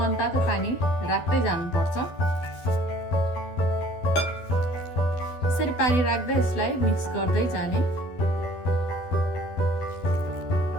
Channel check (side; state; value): right; late; 12 ms